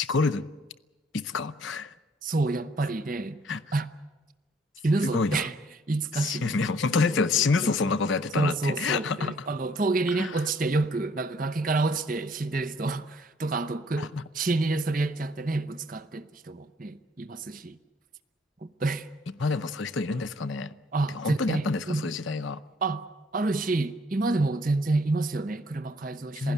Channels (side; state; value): both; normal; correlation 0.62